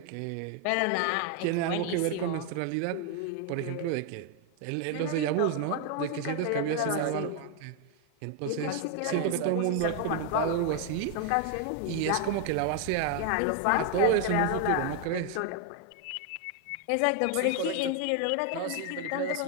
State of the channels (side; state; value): both; different; correlation 0.01